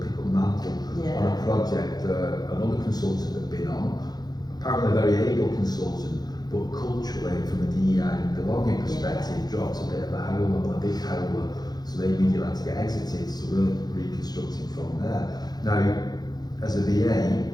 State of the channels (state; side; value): late; right; 0.19 ms